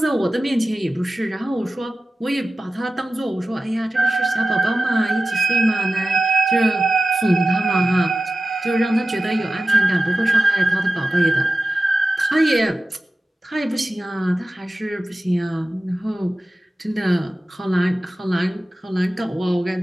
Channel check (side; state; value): both; normal; correlation 0.95